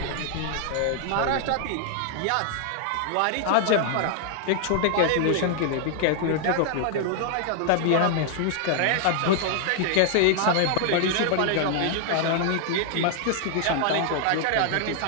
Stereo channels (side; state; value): both; different; correlation 0.00